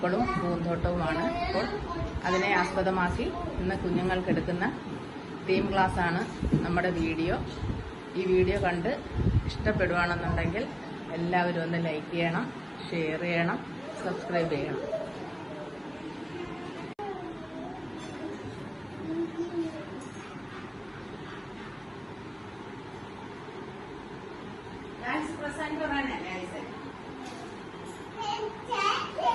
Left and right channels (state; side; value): identical; both; correlation 1.00